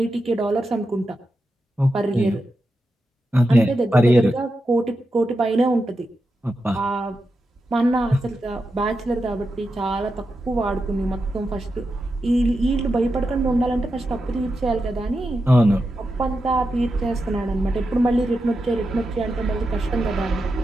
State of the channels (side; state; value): both; normal; correlation 0.88